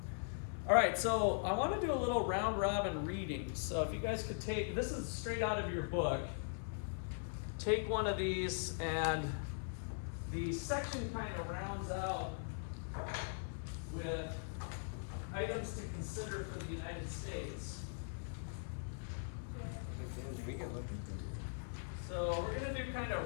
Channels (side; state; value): right; silent; 51 dB below the other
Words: All right, so I want to do a little round robin reading. So if you guys could take, this is straight out of your book, take one of these, and the section kind of rounds out with items to consider for the United States. So we're going to do kind